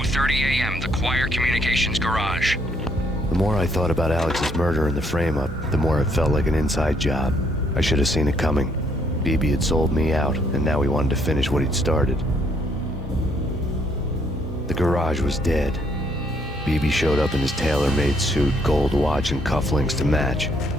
a.m., the Choir Communications Garage. The more I thought about Alex's murder and the frame-up, the more it felt like an inside job. I should have seen it coming. BB had sold me out, and now he wanted to finish what he'd started. The garage was dead. BB showed up in his tailor-made suit, gold watch, and cufflinks to match,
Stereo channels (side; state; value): both; normal; correlation 0.69